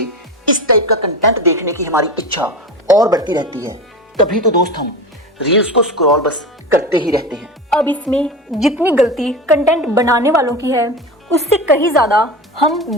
इस टाइप का कंटेंट देखने की हमारी इच्छा और बढ़ती रहती है। तभी तो दोस्त हम रील्स को स्क्रॉल बस करते ही रहते हैं। अब इसमें जितनी गलती कंटेंट बनाने वालों की है, उससे कहीं ज़्यादा हम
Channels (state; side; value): normal; both; correlation 0.27